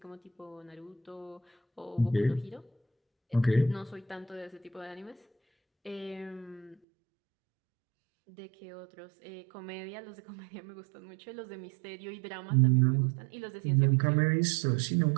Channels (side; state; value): left; drops out; at 6.8 s